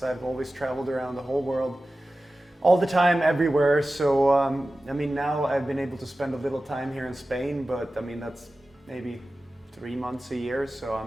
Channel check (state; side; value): normal; both; correlation 0.95